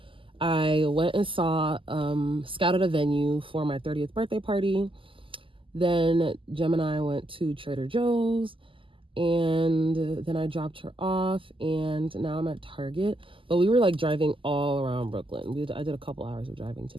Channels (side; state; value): left; late; 0.25 ms